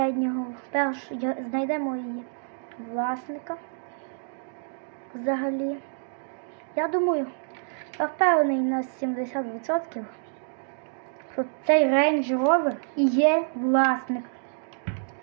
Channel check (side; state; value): left; silent; digital silence